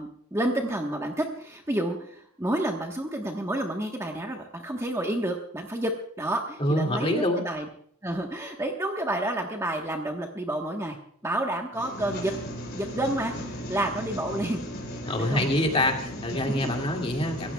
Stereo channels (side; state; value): both; normal; correlation 0.56